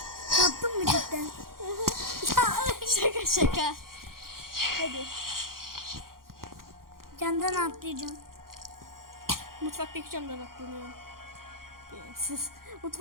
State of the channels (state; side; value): late; left; 0.92 ms